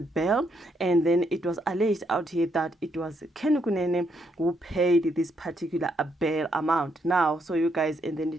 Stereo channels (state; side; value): normal; both; correlation 0.75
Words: And then it was alleged out here that it was Kenny Kunene who paid this particular bail amount. Now, so you guys, and then